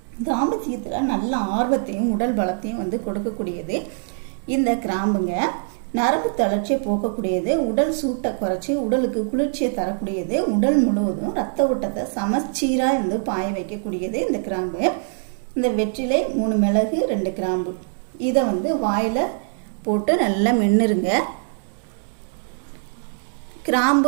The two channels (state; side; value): silent; left; digital silence